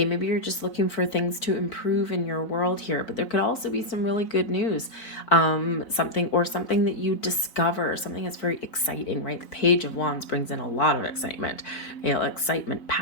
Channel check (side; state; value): right; late; 4.0 ms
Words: maybe you're just looking for things to improve in your world here, but there could also be some really good news, something that you discover, something that's very exciting, right? The Page of Wands brings in a lot of excitement, excitement,